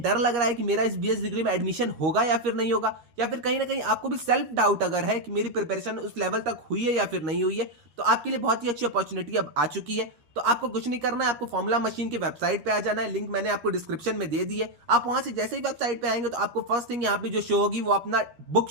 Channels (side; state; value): left; late; 13 ms